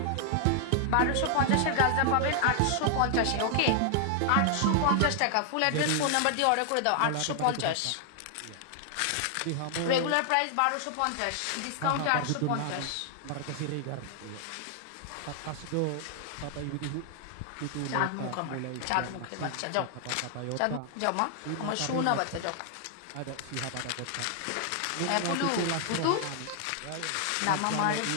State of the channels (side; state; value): both; different; correlation 0.00